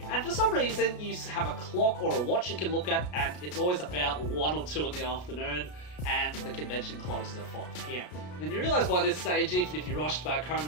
And for some reason, you have a clock or a watch you can look at, and it's always about 1 or 2 in the afternoon, and the convention closes at 5 PM. Then you realise by this stage, even if you rushed back home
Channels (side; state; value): right; late; 33 ms